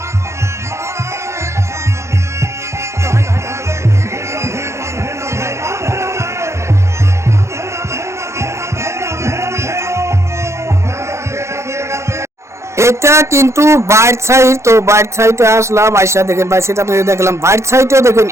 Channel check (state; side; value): late; left; 0.14 ms